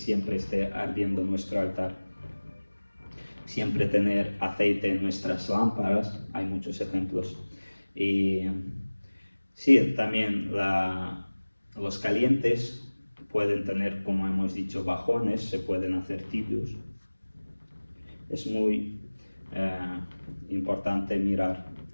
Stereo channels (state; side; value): inverted; both; correlation -1.00